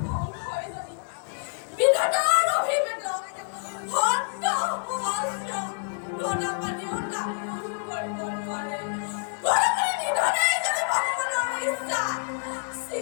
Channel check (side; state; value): right; silent; 60 dB below the other